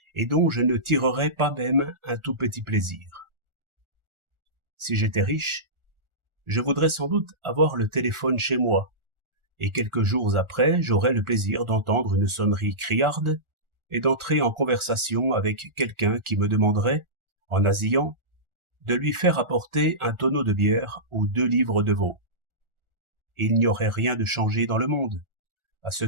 et dont je ne tirerais pas même un tout petit plaisir. Si j'étais riche, je voudrais sans doute avoir le téléphone chez moi, et quelques jours après, j'aurais le plaisir d'entendre une sonnerie criarde et d'entrer en conversation avec quelqu'un qui me demanderait, en nasillant, de lui faire apporter un tonneau de bière ou 2 livres de veau. Il n'y aurait rien de changé dans le monde, à ce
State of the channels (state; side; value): late; left; 1.4 ms